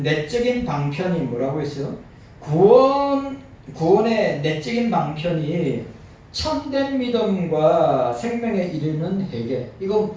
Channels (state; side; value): identical; both; correlation 1.00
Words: 내적인 방편이 뭐라고 했어요? 구원의 내적인 방편이 참된 믿음과 생명에 이르는 회개. 이거